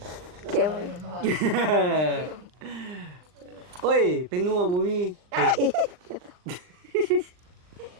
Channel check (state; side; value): late; left; 39 ms